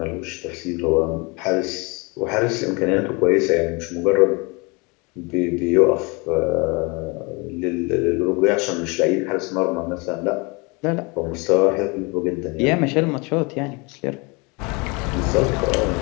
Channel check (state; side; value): quieter; right; 28.4 dB